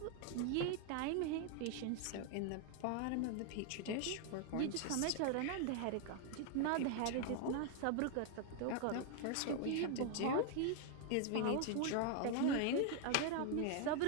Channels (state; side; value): different; both; correlation 0.00